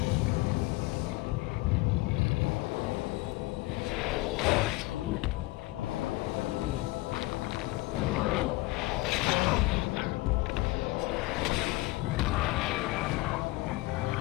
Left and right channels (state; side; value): quieter; right; 21.0 dB